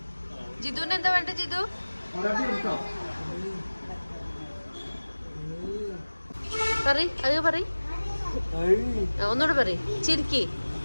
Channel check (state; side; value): inverted; both; correlation -1.00